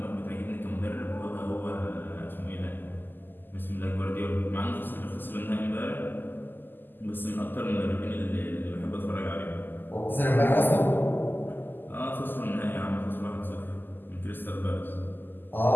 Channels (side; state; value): right; late; 0.091 ms